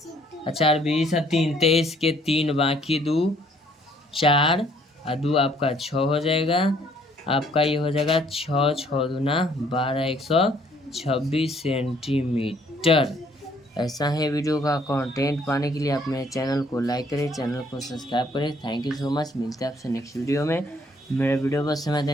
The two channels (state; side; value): normal; both; correlation 0.63